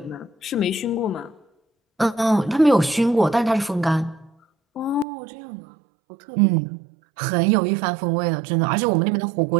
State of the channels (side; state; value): left; drops out; at 5.1 s